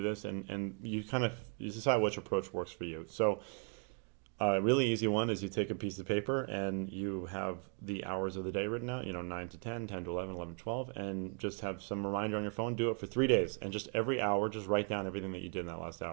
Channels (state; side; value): quieter; left; 38.7 dB